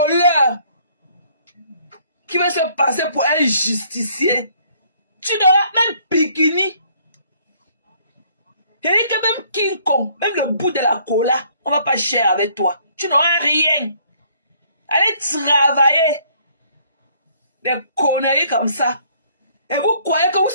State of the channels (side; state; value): both; inverted; correlation -0.62